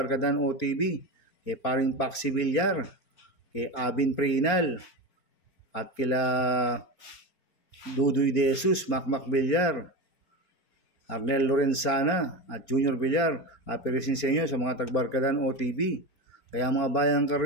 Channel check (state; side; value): late; right; 4.4 ms